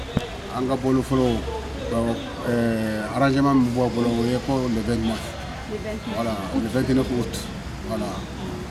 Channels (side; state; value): both; identical; correlation 1.00